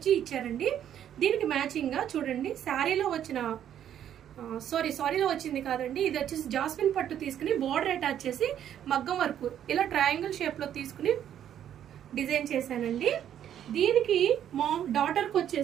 ఇచ్చారండి. దీనికి మ్యాచింగ్ గా చూడండి, శారీలో వచ్చిన సారీలో వచ్చింది కాదండి, ఇది వచ్చేసి జాస్మిన్ పట్టు తీసుకుని బోర్డర్ అటాచ్ చేసి మగ్గం వర్క్ ఇలా ట్రయాంగిల్ షేప్ లో తీసుకుని డిజైన్ చేశానండి. దీనికి డాటర్కి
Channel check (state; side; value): quieter; left; 10.2 dB